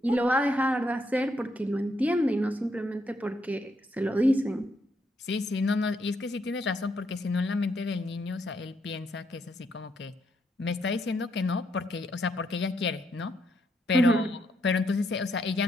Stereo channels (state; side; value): normal; both; correlation 0.76